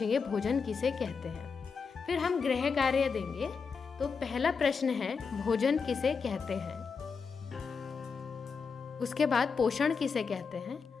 भोजन किसे कहते हैं। फिर हम गृह कार्य देंगे। तो पहला प्रश्न है भोजन किसे कहते हैं। उसके बाद पोषण किसे कहते हैं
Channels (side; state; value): right; quieter; 5.5 dB